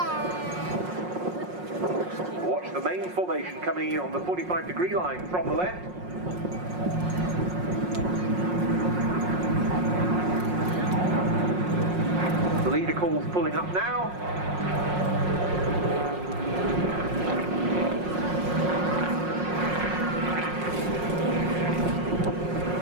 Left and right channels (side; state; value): left; late; 5.5 ms